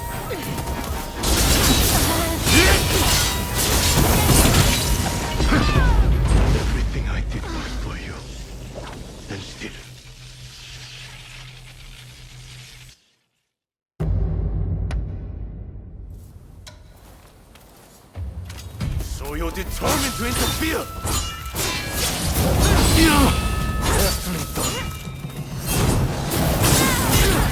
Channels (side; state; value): both; identical; correlation 1.00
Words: Everything I did was for you. And still. So you're determined to interfere? Carefully done.